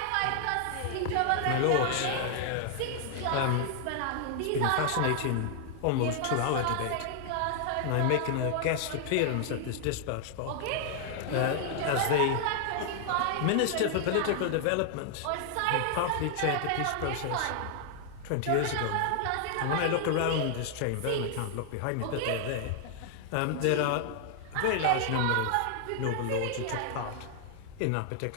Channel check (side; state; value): both; different; correlation 0.00